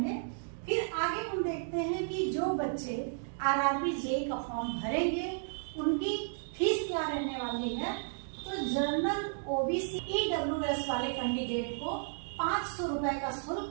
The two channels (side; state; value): left; silent; digital silence